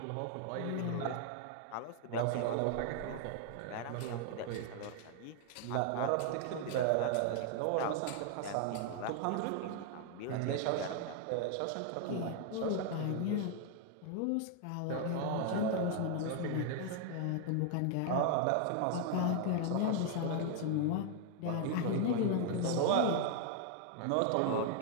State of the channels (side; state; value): both; different; correlation 0.00